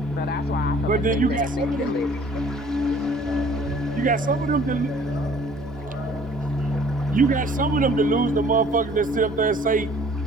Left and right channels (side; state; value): both; normal; correlation 0.54